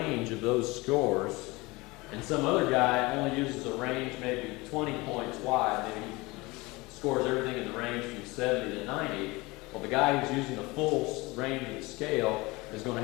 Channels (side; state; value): right; quieter; 23.1 dB